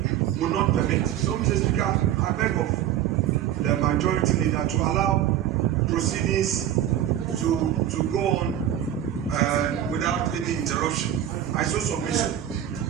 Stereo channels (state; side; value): quieter; left; 11.1 dB